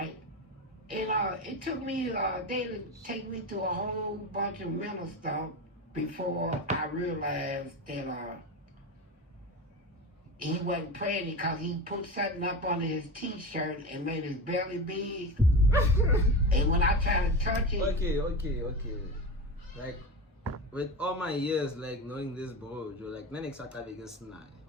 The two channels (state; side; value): normal; both; correlation 0.24